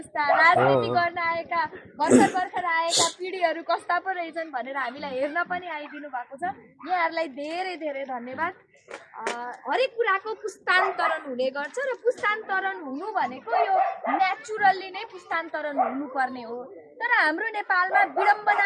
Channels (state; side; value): identical; both; correlation 1.00